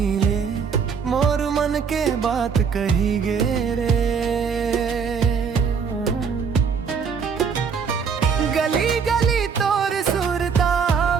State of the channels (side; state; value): left; quieter; 6.2 dB